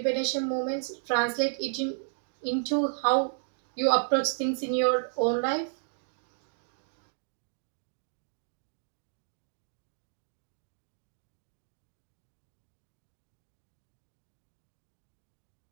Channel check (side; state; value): left; silent; digital silence